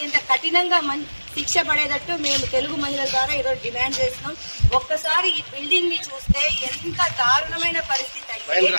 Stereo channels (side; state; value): both; inverted; correlation -1.00